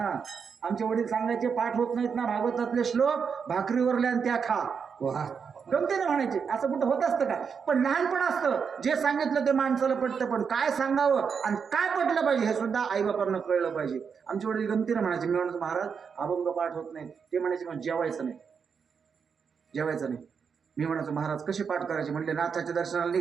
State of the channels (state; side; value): quieter; left; 6.3 dB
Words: आमचे वडील सांगायचे पाठ होत नाहीत ना भागवतातले श्लोक, भाकरीवरले आणि त्या खा. गमतीने म्हणायचे. असं कुठं होत असतं का? पण लहानपण असतं, जे सांगितलं ते माणसाला पटतं, पण काय सांगावं आणि काय पटलं पाहिजे हे सुद्धा आईबापांना कळलं पाहिजे. आमचे वडील गमतीने म्हणायचे. मी म्हणायचो महाराज अभंग पाठ होत नाही. ते म्हणायचे मग जेवायचं नाही. मी म्हणायचो महाराज कसे पाठ करायचे? म्हणले नाथाच्या दर्शनाला